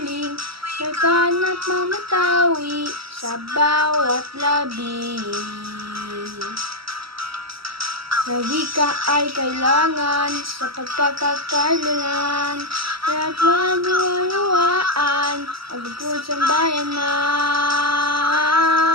laganap mamatawi sa bawat labi. Na wika ay kailangan sa pagkakakailangan at wanuwaan ang bukod sa bayanan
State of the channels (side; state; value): left; late; 0.75 ms